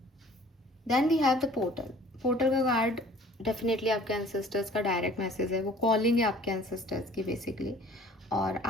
Then we have the portal. Portal का कार्ड डेफिनेटली आपके एंसेस्टर्स का डायरेक्ट मैसेज है, वो कॉलिंग है आपके एंसेस्टर्स की बेसिकली, और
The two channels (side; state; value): both; normal; correlation 0.51